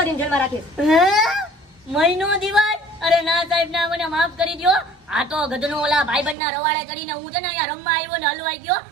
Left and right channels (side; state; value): left; drops out; at 6.4 s